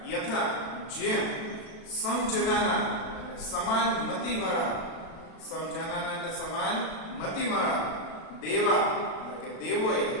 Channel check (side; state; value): right; late; 36 ms